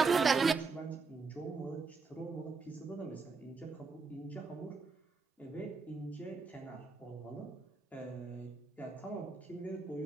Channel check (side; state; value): left; quieter; 4.4 dB